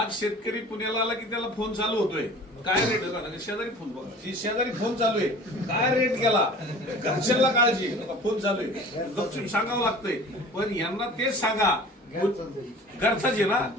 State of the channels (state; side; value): normal; both; correlation 0.43